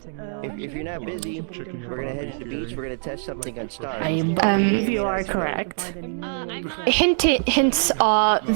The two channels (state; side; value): silent; left; digital silence